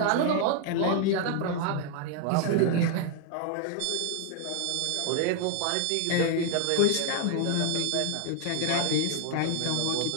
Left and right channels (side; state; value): both; different; correlation 0.00